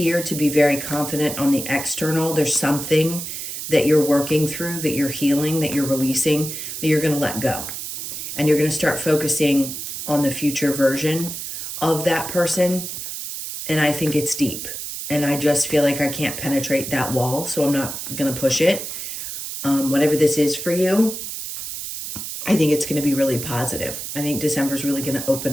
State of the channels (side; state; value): right; noise; hiss, 7 dB below the sound